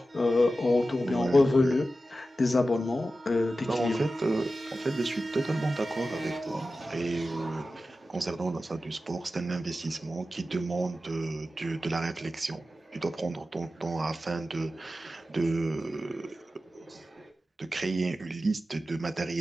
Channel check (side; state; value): both; normal; correlation 0.93